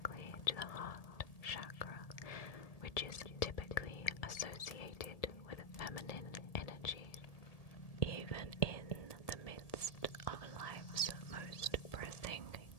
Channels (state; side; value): late; right; 1.7 ms